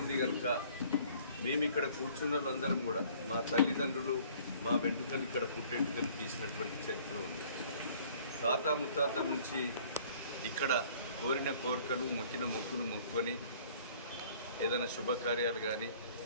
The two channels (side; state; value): both; inverted; correlation -0.55